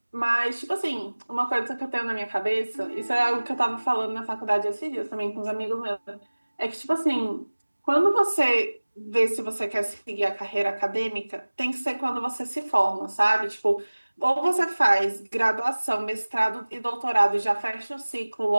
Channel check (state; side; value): inverted; both; correlation -1.00